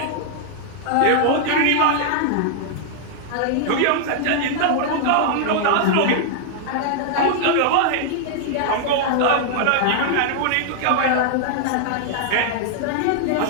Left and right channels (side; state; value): both; different; correlation -0.01